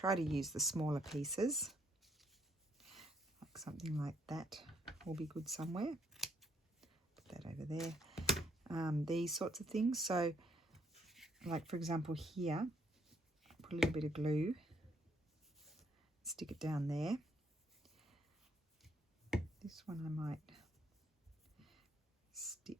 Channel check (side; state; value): both; normal; correlation 0.69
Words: to use the smaller pieces. Like something like that will be good somewhere. Put that over there. These sorts of things. So like for example here, put a little bit of glue. Stick it down there. This one I might